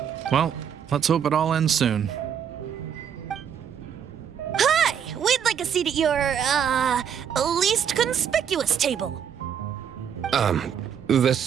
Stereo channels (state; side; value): quieter; left; 8.2 dB